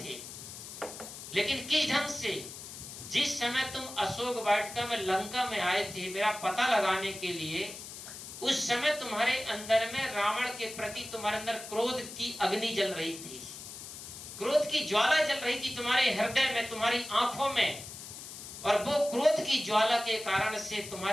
लेकिन किस ढंग से? जिस समय तुम अशोक वाटिका में लंका में आए थे मेरा पता लगाने के लिए, उस समय तुम्हारे अंदर में रावण के प्रति तुम्हारे अंदर क्रोध की अग्नि जल रही थी, क्रोध की ज्वाला जल रही थी तुम्हारे हृदय में, तुम्हारी आंखों में, और वो क्रोध की ज्वाला के कारण से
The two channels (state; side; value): noise; left; hiss, 12 dB below the sound